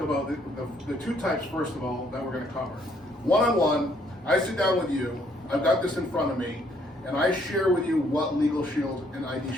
about the two types, first of all, that we're going to cover. One-on-one, I sit down with you, I've got this in front of me, and I share with you what Legal Shield and ID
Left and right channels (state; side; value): normal; both; correlation 0.67